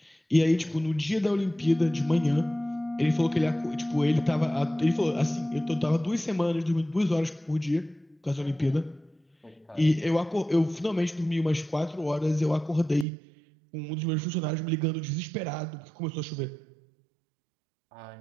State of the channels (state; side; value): drops out; left; at 13.1 s